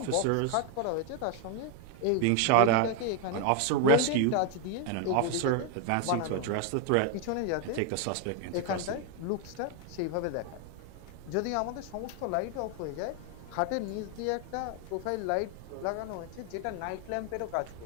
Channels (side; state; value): both; different; correlation 0.01